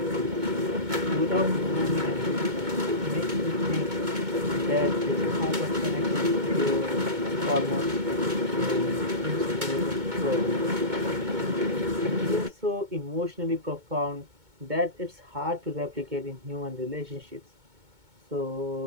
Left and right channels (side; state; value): left; late; 2.2 ms